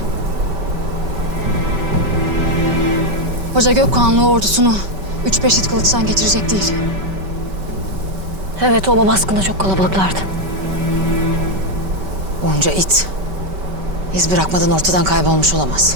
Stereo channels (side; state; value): left; late; 5.2 ms